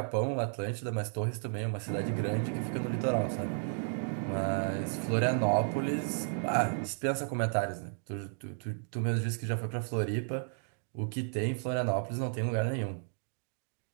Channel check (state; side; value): silent; left; digital silence